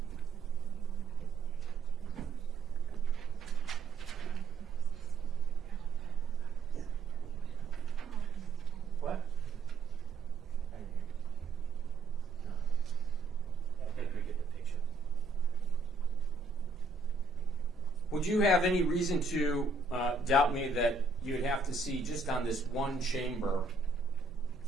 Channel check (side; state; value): left; quieter; 3.7 dB